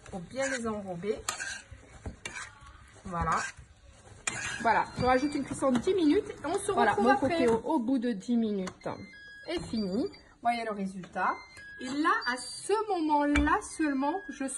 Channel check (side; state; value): both; identical; correlation 1.00